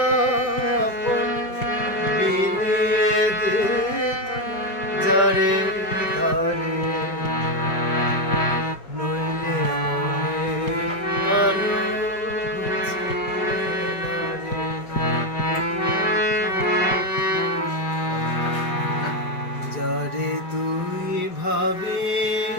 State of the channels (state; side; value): late; right; 5.1 ms